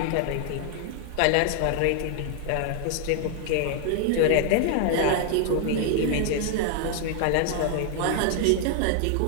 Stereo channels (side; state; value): both; different; correlation 0.00